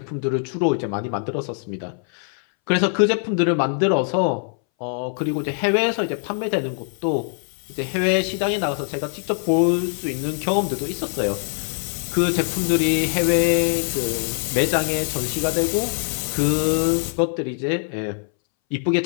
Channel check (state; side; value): silent; right; 62 dB below the other